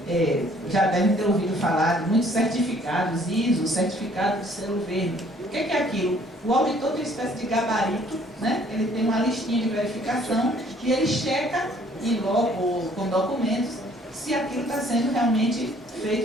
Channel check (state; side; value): normal; both; correlation 0.59